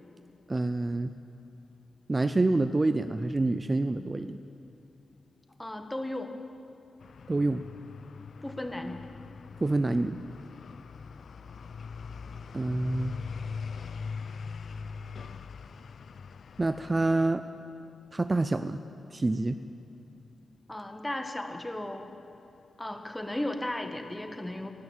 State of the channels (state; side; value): normal; both; correlation 0.96